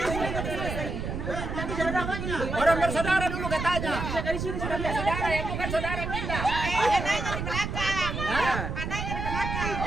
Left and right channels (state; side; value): noise; right; rumble, 4 dB below the sound